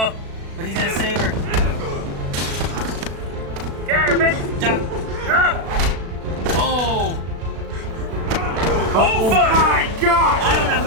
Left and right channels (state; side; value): late; left; 36 ms